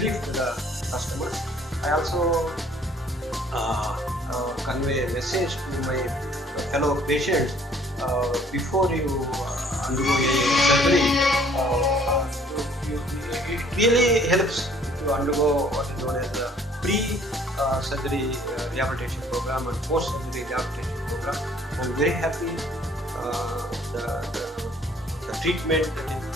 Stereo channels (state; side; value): normal; both; correlation 0.58